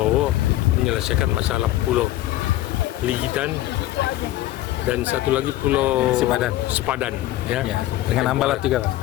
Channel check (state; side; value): quieter; right; 15.2 dB